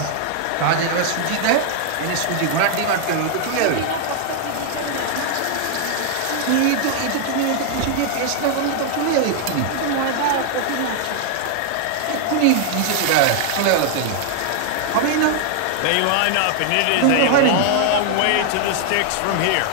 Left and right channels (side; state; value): both; different; correlation 0.00